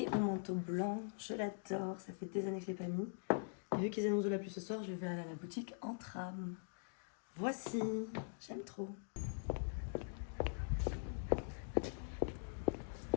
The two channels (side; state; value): right; silent; digital silence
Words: mon manteau blanc. Je l'adore, ça fait des années que je ne l'ai pas mis. Et vu qu'ils annoncent de la pluie ce soir, je vais aller à la boutique en tram. Voici, j'aime trop.